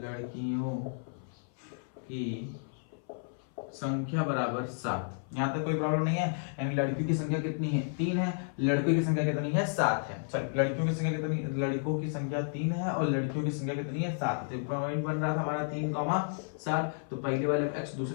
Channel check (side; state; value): right; silent; 56 dB below the other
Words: की संख्या बराबर 7। यहाँ तक कोई प्रॉब्लम नहीं है, यानी लड़कियों की संख्या कितनी है 3 है, लड़कों की संख्या कितनी है 7 है। चल, लड़कियों की संख्या कितनी, लड़कों की संख्या 3 है और लड़कियों की संख्या कितनी है 7। तो पॉइंट बन रहा था हमारा 3,7, तो पहले वाले को x,